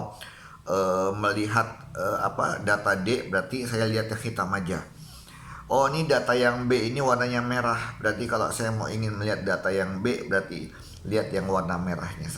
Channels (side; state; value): both; identical; correlation 1.00